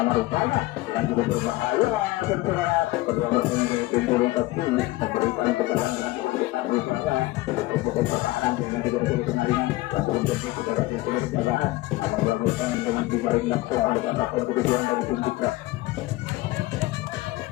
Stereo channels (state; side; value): quieter; right; 18.9 dB